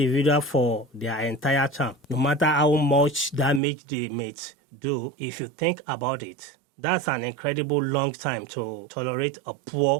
for their entire term, no matter how much damage they may do. If you think about it, that's an incredible long time to tolerate a poor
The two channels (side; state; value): left; drops out; at 3.6 s